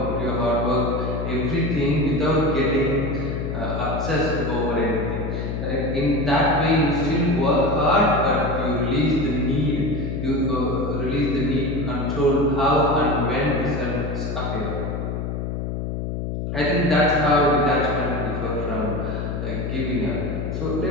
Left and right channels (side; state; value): left; noise; hum, 3 dB below the sound